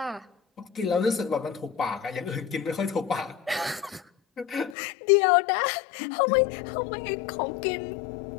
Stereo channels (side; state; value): right; drops out; at 4.8 s